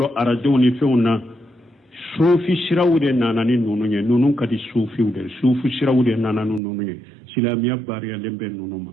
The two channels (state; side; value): drops out; left; at 6.6 s